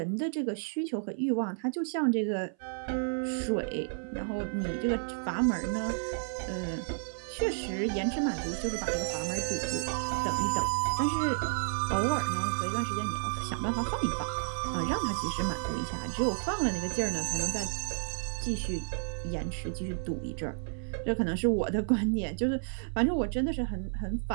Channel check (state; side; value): silent; left; 57 dB below the other